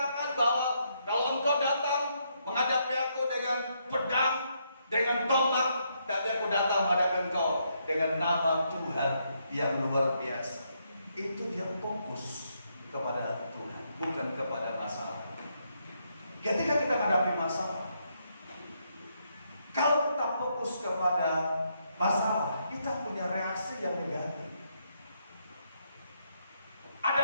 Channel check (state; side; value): inverted; both; correlation -0.76